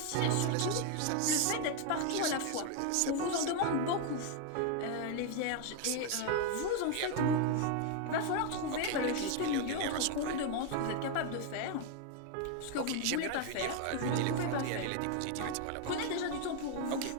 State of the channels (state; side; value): different; both; correlation 0.01